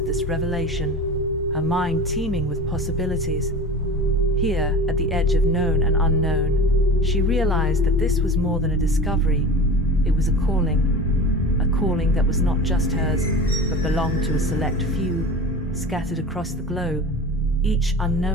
this revelation, her mind teeming with possibilities. Here, at the edge of known and unknown, she realized that this was more than a discovery. It was a calling that was not just hers, but belonged to a select few, scattered across the globe, each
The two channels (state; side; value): normal; both; correlation 0.34